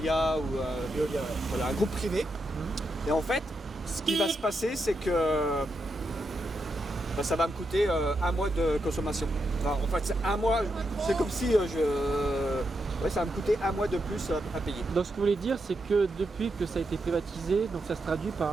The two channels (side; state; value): both; normal; correlation 0.84